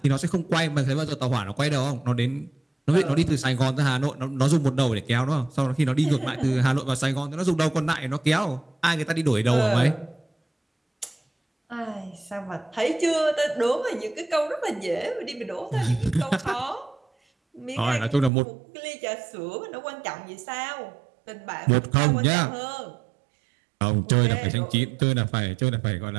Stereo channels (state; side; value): drops out; left; at 18.3 s